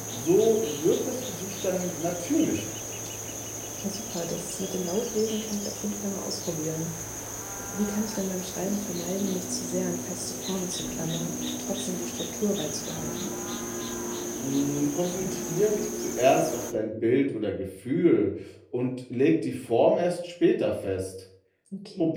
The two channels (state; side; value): identical; both; correlation 1.00